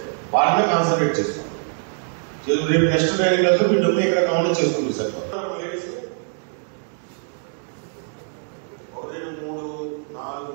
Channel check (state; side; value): silent; left; 57 dB below the other